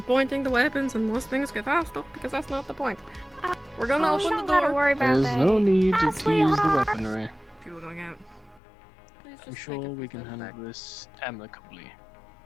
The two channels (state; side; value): drops out; right; at 8.6 s